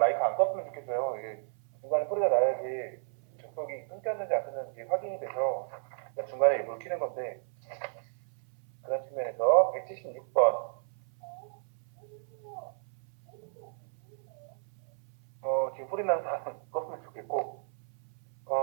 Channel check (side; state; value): left; silent; 56 dB below the other